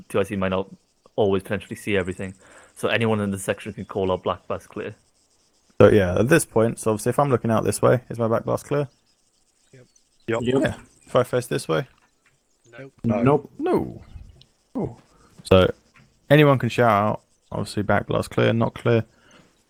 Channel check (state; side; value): identical; both; correlation 1.00